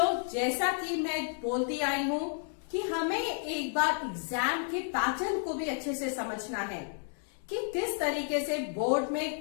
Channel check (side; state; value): right; silent; 57 dB below the other